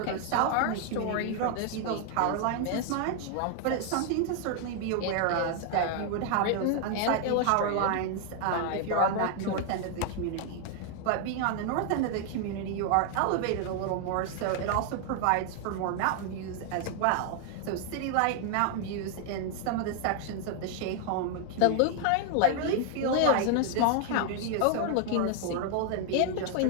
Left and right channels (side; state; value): both; different; correlation 0.00